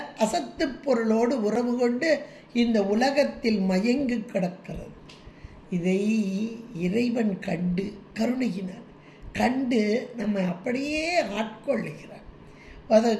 அசத்து பொருளோடு உறவு கொண்டு இந்த உலகத்தில் மயங்கி கிடக்கிறது. இதை இறைவன் கண்டு கருணையினார் கண்டு நம்ம அப்படியே ஆட்கொள்ளுகிறார்.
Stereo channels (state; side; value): identical; both; correlation 1.00